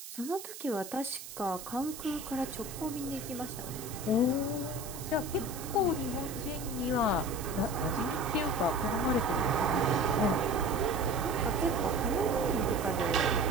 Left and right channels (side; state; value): right; noise; hiss, 12 dB below the sound